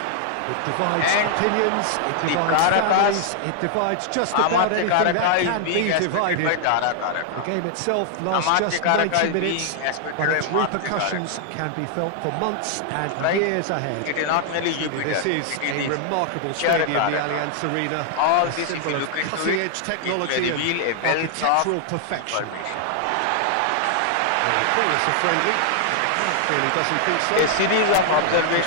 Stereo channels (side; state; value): both; different; correlation 0.00